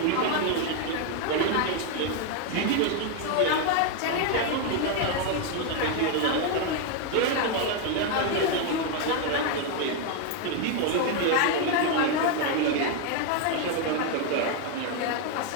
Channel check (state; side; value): different; both; correlation 0.01